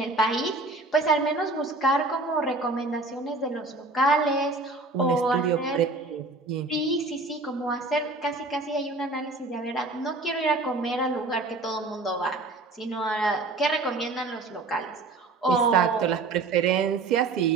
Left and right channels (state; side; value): quieter; left; 3.3 dB